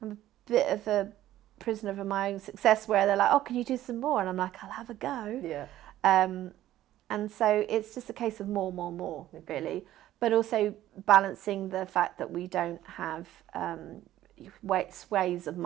a bit of a prisoner of my own success where they're like, oh, can you do some more? And I'm like, I'll have a go. Yeah. And so it's just a case of more, really. But also balancing the fact that we don't have ways of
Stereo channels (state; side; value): quieter; left; 13.6 dB